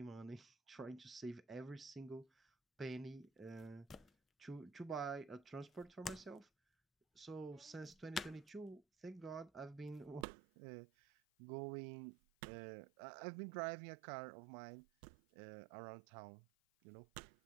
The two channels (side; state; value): left; drops out; at 10.2 s